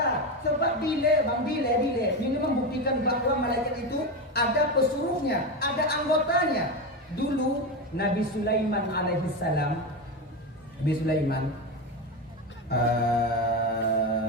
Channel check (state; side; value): normal; both; correlation 0.16